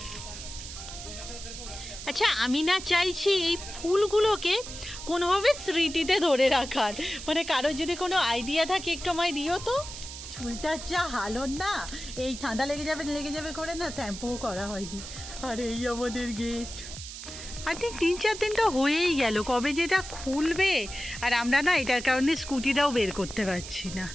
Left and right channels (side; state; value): right; noise; hiss, 11 dB below the sound